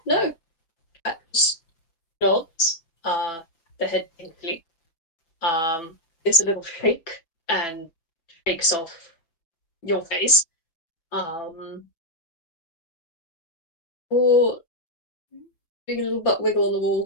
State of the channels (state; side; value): late; right; 6.0 ms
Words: no. Cat just nods. The head thankfully gives a little shake and shakes off your face. Um, or doing a little butt wiggle on the